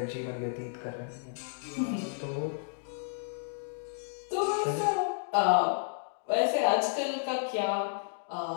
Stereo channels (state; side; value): silent; right; digital silence